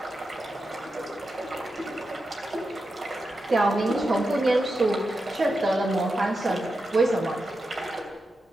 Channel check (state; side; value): normal; both; correlation 0.89